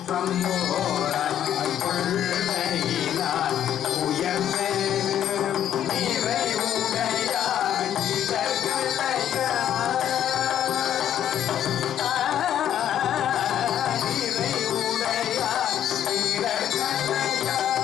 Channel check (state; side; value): quieter; right; 10.5 dB